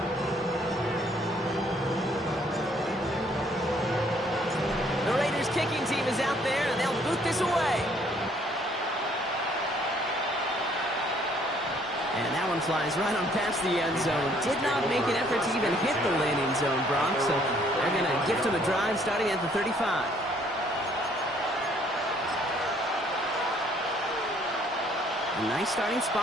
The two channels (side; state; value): both; normal; correlation 0.63